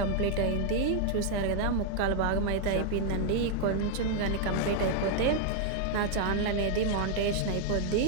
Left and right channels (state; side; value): different; both; correlation 0.00